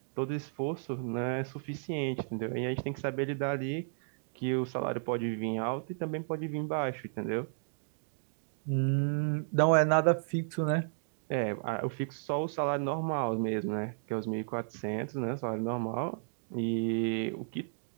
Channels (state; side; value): silent; left; digital silence